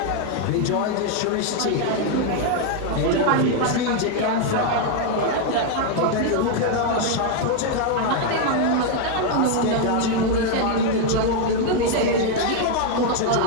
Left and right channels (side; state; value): both; different; correlation 0.00